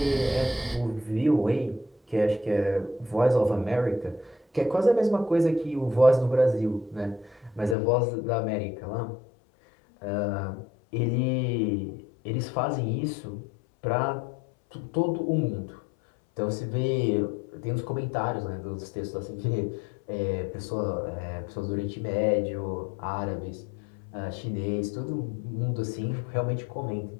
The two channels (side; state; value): right; drops out; at 7.8 s